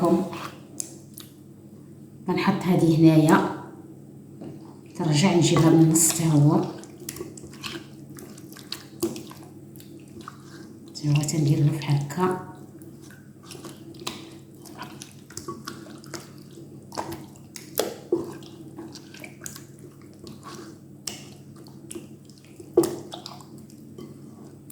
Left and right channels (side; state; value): both; identical; correlation 1.00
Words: غنحط هذه هنايا، ترجع نجيبها من النص حتى هو تندير له بحال هكا.